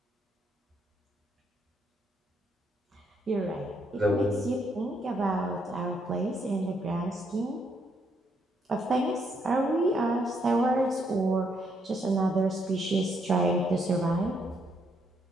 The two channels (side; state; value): both; normal; correlation 0.74